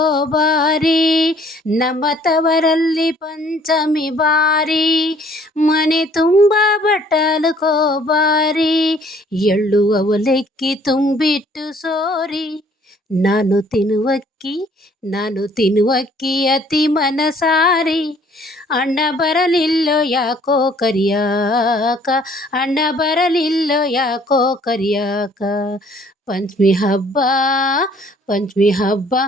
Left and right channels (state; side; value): normal; both; correlation 0.59